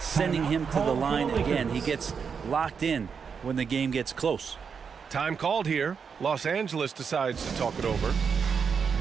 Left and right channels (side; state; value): left; quieter; 6.2 dB